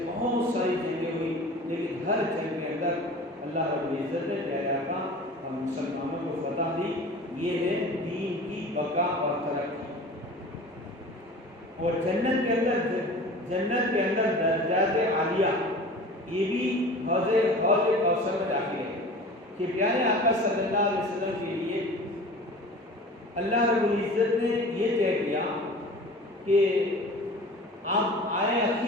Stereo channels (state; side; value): normal; both; correlation 0.39